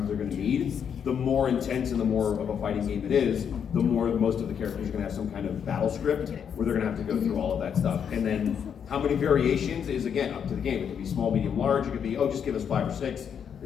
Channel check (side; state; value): right; quieter; 7.8 dB